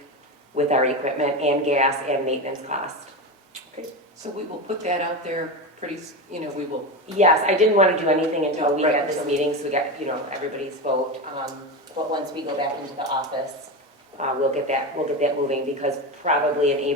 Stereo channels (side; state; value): both; normal; correlation 0.19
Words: with our equipment and gas and maintenance cost. Okay, so we will put that out there pretty, we will. Yes, I didn't want to do anything until we Right, had this so- meeting, so we got, everybody's vote. But once we go back into the office, we'll get that moving, because probably in